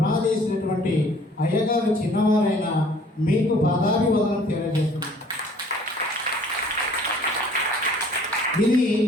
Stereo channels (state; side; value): normal; both; correlation 0.55